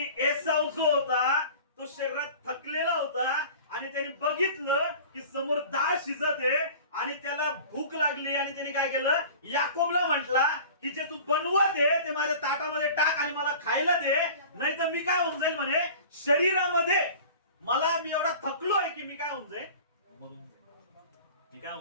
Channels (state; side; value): inverted; both; correlation -0.41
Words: एसाव जो होता तो शरीरात थकलेला होता आणि त्याने बघितलं की समोर डाळ शिजत आहे आणि त्याला भूक लागली आणि त्याने काय केलं? याकोबला म्हटला की जे तू बनवत आहे ते माझ्या ताटामध्ये टाक आणि मला खायला दे, नाही तर मी काय होऊन जाईल म्हणे शरीरामध्ये. मला मी एवढा थकलोय की मी काय होऊन जाईल? म्हणून मी काय